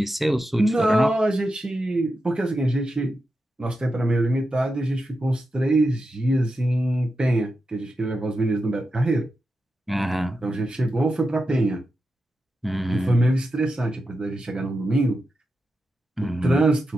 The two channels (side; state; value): both; normal; correlation 0.89